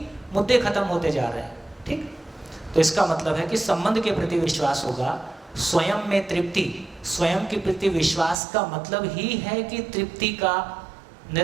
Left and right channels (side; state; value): left; drops out; at 8.3 s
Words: मुद्दे खत्म होते जा रहे हैं। ठीक, तो इसका मतलब है कि संबंध के प्रति विश्वास होगा, स्वयं में तृप्ति। स्वयं के प्रति विश्वास का मतलब ही है कि तृप्ति का